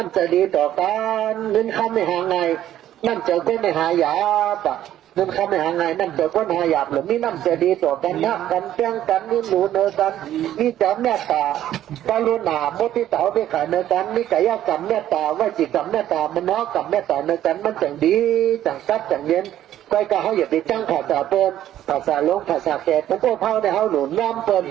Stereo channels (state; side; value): quieter; left; 12.1 dB